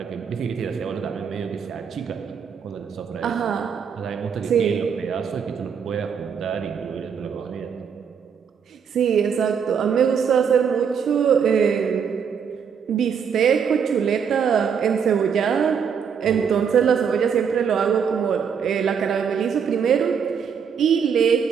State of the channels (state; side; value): quieter; left; 7.0 dB